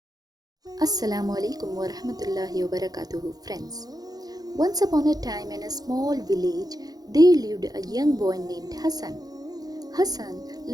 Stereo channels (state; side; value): late; left; 0.19 ms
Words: alaikum wa rahmatullahi wa barakatuhu, friends. Once upon a time in a small village, there lived a young boy named Hassan. Hassan